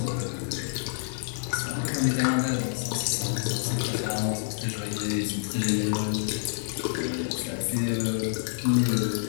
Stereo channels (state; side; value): silent; right; digital silence